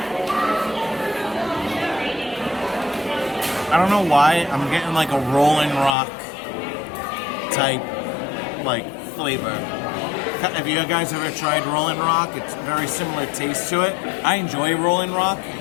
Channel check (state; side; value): drops out; right; at 6.0 s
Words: I don't know why, I'm getting like a Rolling Rock type like flavor. Have you guys ever tried Rolling Rock? It's very similar taste to it. I enjoy Rolling Rock, I